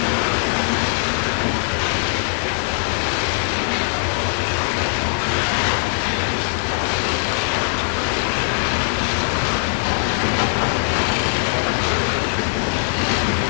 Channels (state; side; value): silent; right; 55 dB below the other